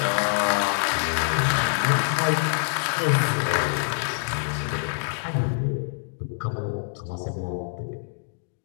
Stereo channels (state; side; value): silent; right; digital silence